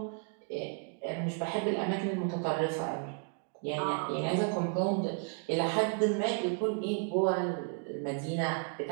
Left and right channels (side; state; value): left; quieter; 35.5 dB